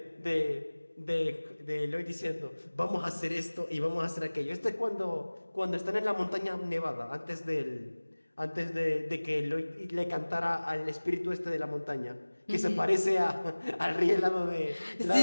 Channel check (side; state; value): both; inverted; correlation -1.00